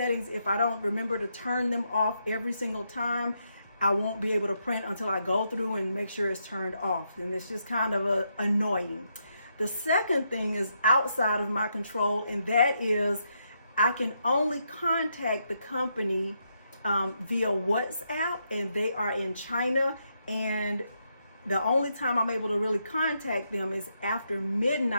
if I don't remember to turn them off every single time, I won't be able to print until I go through and make sure it's turned off, and it's just kind of annoying. The second thing is outside of my control, and that is I can only contact the company via WhatsApp, and they are in China, and the only time I'm able to really contact them is after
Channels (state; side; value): inverted; both; correlation -0.80